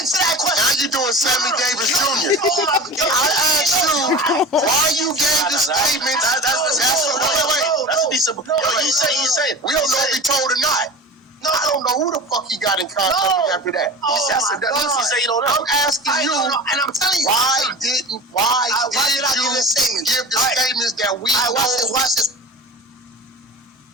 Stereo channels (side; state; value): both; normal; correlation 0.33